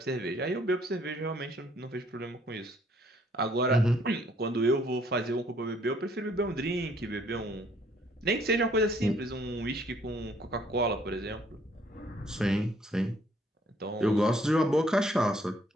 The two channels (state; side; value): normal; both; correlation 0.64